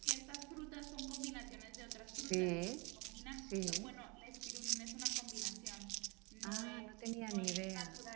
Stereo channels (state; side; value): quieter; left; 28.5 dB